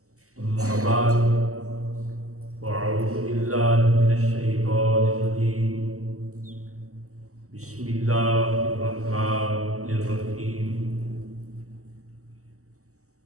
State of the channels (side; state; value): left; late; 0.65 ms